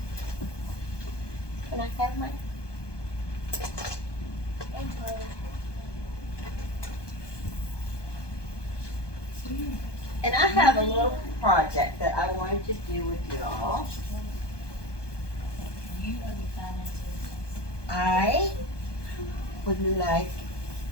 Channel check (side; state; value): right; late; 1.2 ms